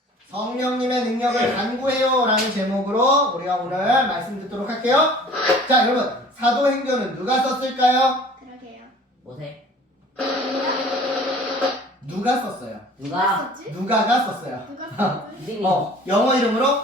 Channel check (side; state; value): both; normal; correlation 0.48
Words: 성령님의 능력을 간구해요 라는 제목으로 우리가 오늘 말씀 듣도록 할게요. 자, 여러분, 사도행전은 누가 썼을까요? 그러게요. 뭐세? 누가 썼어요? 누가? 썼지? 누가가 썼어요. 누가 썼지? 영어 이름으로